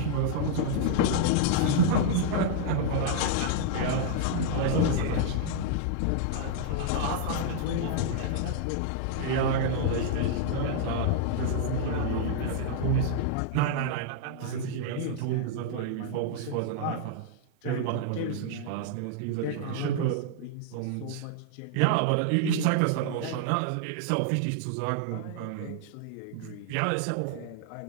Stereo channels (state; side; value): different; both; correlation -0.01